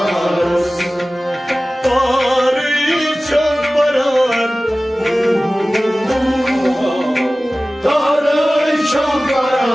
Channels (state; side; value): normal; both; correlation 0.97